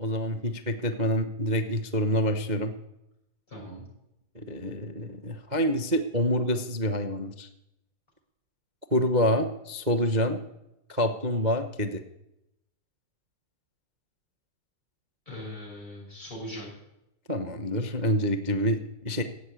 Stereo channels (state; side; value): late; left; 2.0 ms